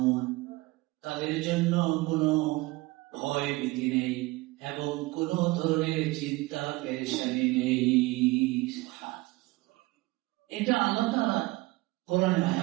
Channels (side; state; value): left; quieter; 21.7 dB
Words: তাদের জন্য কোনো ভয় ভীতি নেই এবং কোন ধরনের চিন্তা পেরেশানি নেই। এটা আল্লাহ তাআলা কোরআনে